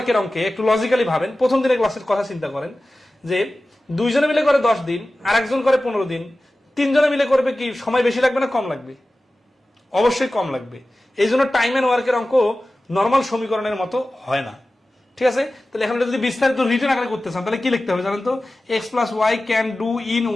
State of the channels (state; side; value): normal; both; correlation 0.96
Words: অঙ্কে একটু লজিক্যালি ভাবেন। প্রথম দিনের ক্লাসের কথা চিন্তা করেন যে 2 জনে মিলে করে 10 দিন আর একজন করে 15 দিন, 3 জনে মিলে করবে কি সময় বেশি লাগবে না কম লাগবে? অবশ্যই কম লাগবে। এই জন্য টাইম এন্ড ওয়ার্কের অঙ্ক নর্মাল সমীকরণের মতো হয় না, ঠিক আছে? তাহলে এখন যদি বিস্তারিত রিটেন আকারে করতে চান তাহলে কি লিখতে হবে জানেন তো? x + y can do in